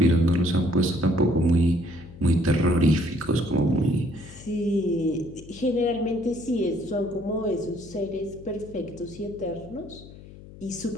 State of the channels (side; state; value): left; noise; hum, 18 dB below the sound